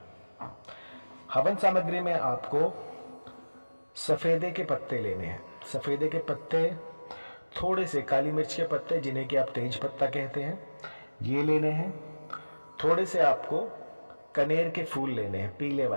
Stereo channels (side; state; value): both; inverted; correlation -1.00